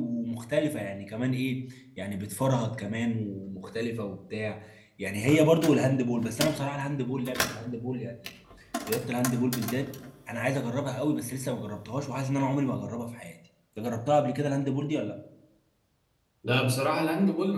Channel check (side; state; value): both; identical; correlation 1.00